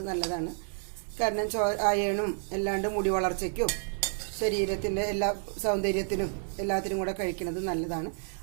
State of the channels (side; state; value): left; silent; 58 dB below the other